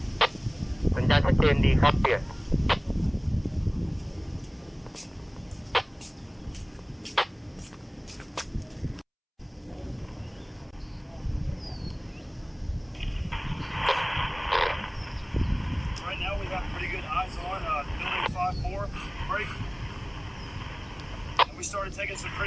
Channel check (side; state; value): both; identical; correlation 1.00